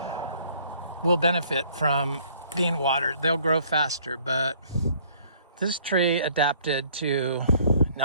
will benefit from being watered. They'll grow faster, but this tree adapted to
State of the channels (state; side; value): inverted; both; correlation -0.60